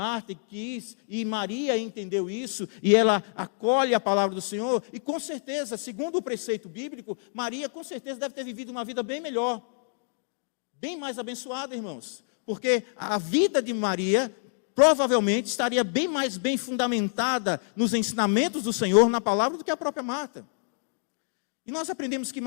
e Maria entendeu isso, e ela acolhe a palavra do Senhor, e com certeza, segundo o preceito bíblico, Maria com certeza deve ter vivido uma vida bem melhor, bem mais abençoada, irmãos, porque a vida de Maria provavelmente estaria bem mais bem fundamentada nos ensinamentos do Senhor, na palavra, do que a própria Marta. E nós aprendemos que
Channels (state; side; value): silent; right; digital silence